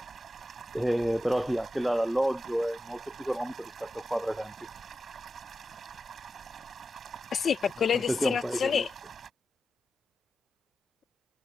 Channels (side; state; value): both; normal; correlation 0.90